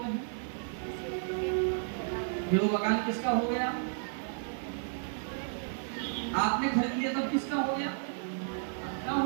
हैं? फिर वो मकान किसका हो गया? आपने खरीद लिया तब किसका हो गया? क्या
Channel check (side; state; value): left; silent; 56 dB below the other